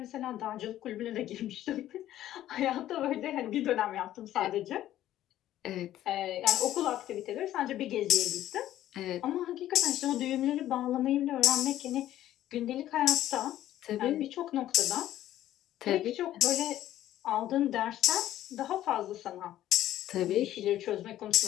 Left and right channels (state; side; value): quieter; right; 13.0 dB